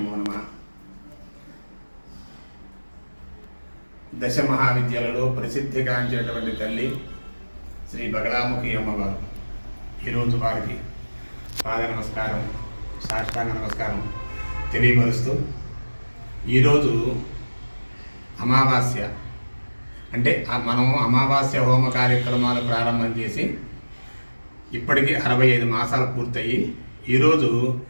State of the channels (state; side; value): inverted; both; correlation -1.00